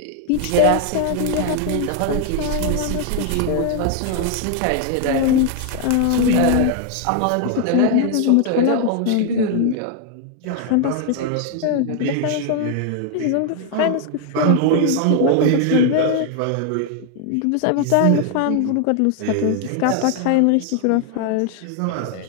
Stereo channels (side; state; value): both; different; correlation 0.00